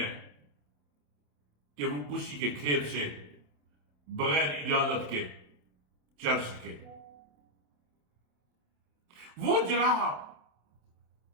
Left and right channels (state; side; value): late; left; 27 ms